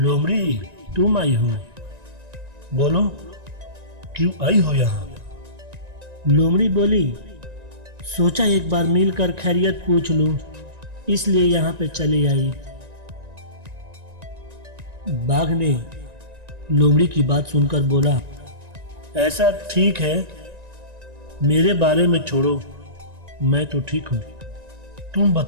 तुम आई हो? बोलो, क्यों आई हो यहाँ? लोमड़ी बोली, सोचा एक बार मिलकर खैरियत पूछ लूं, इसलिए यहाँ पे चली आई। बाघ ने लोमड़ी की बात सुनकर बोला, ऐसा ठीक है, मेरे बारे में छोड़ो, मैं तो ठीक हूँ। तुम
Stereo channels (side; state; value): left; late; 1.9 ms